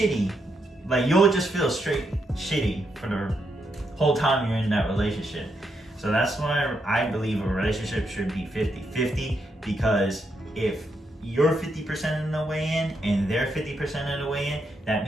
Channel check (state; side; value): normal; both; correlation 0.80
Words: Like, you'll just feel straight shitty for the whole time you're in that relationship. So that's why I believe a relationship should be 50-50, because if you're 50% in the way in and they're 50% in the way in, that